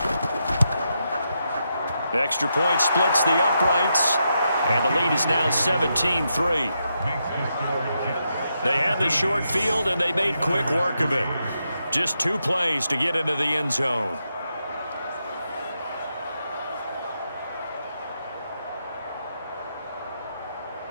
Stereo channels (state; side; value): inverted; both; correlation -0.83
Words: Extra point splits the uprights. And the lead is now 17-3. They had the short field, and they made quick work of it. Just 2 plays to get into the end zone.